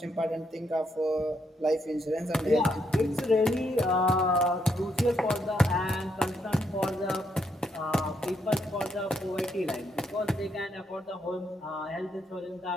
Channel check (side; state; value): both; normal; correlation 0.77